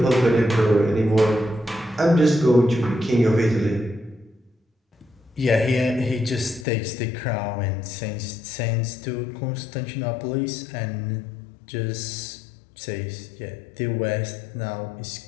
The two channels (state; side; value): drops out; right; at 6.7 s